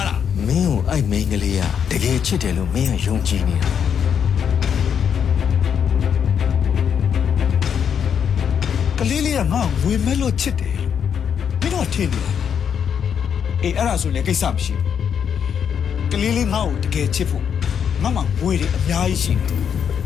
းလား မင်းကိုအဲ့မိန်းကလေးကတကယ်ချစ်တယ်လို့မင်းကယုံကြည်နေတာ ကလေးလေးကငါ့ကိုဝေမဲ့လို့ချစ်တယ်မင်းတို့ထင်တယ်အေးအဲ့ဒါဆိုလည်းကိစ္စမရှိဘူးကလေးလေးငါ့ကိုတကယ်ချစ်ဖို့ငါမှဝေတွေအများကြီးရှိတယ်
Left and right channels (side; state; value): right; quieter; 7.8 dB